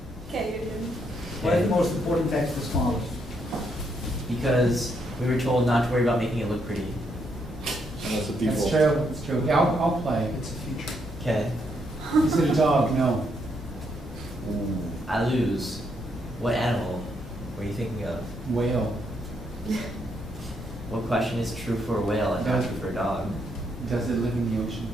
Okay, you're doing. Why is the most important text the smallest? Because we were told not to worry about making it look pretty. And that's the That's default. true, it's true. Yeah, I'll play, it's a future. Okay. Is it a dog? No. I lose. What animal were you thinking of? Whale. What question is true for a whale and not true for a dog? Does it live in the ocean?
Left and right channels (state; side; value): normal; both; correlation 0.76